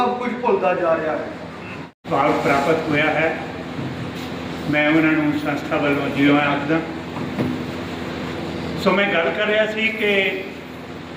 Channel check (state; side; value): identical; both; correlation 1.00